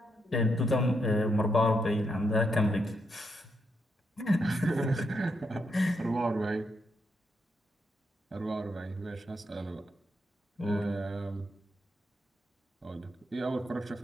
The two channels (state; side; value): normal; both; correlation 0.80